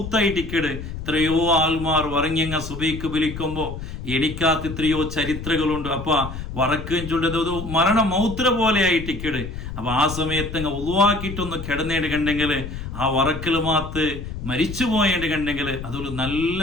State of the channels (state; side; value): noise; left; rumble, 8 dB below the sound